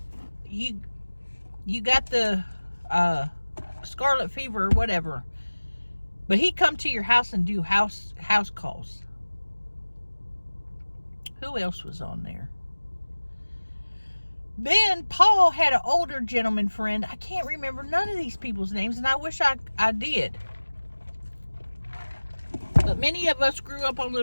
you got the scarlet fever, or whatever. But he'd come to your house and do house calls. Who else was on there? Then Paul had an older gentleman friend. I can't remember none of these people's names, and I wish I did. But many of us grew up on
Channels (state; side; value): inverted; both; correlation -1.00